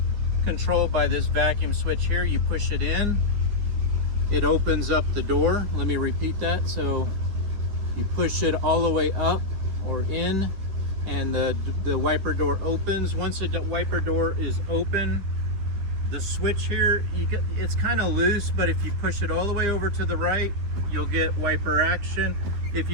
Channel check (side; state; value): left; late; 10 ms